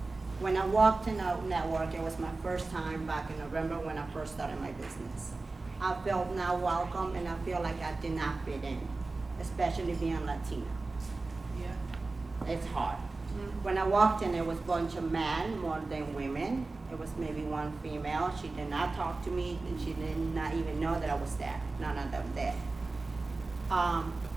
When I walked in a network, it was my first time back in November when I first started my business. I felt not welcome and I feel like I did not fit in, especially being Latina. Yeah. It's hard. When I walked in, it was a bunch of men more than women. It was maybe one female. She did not talk to me and she did not even know that I was there. None of them did.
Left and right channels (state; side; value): quieter; left; 3.5 dB